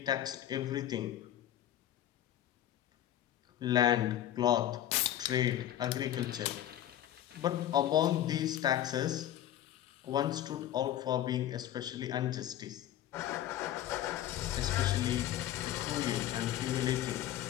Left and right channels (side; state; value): right; quieter; 12.1 dB